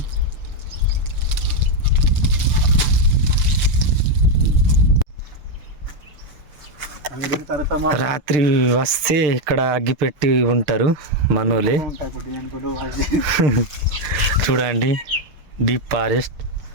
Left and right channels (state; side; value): late; left; 6.6 ms